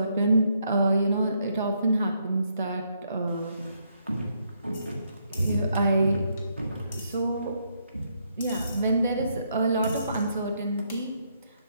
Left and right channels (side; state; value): both; inverted; correlation -0.75